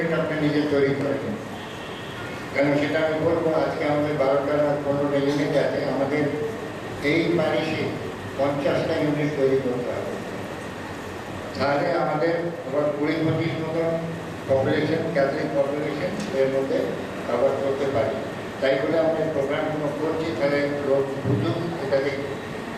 আপনি নিজে তৈরি করেন। কেন সেটা আমি বলবো, আজকে আমাদের 12টা না 15টা ইউনিট আছে, আমাদের এই প্যারিশে 50টা ইউনিট তৈরি করতে হবে। তাহলে আমাদের আবার 20-25 মতন পপুলেশন, ক্যাথলিক পপুলেশন এর মধ্যে কভার করতে পারি। তাই বলে আমরা প্রোগ্রামগুলো করছি, তাহলে লোক বুঝুক এটাতে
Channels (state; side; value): identical; both; correlation 1.00